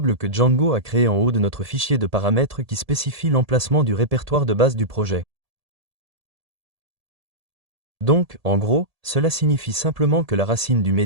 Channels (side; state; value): left; late; 1.7 ms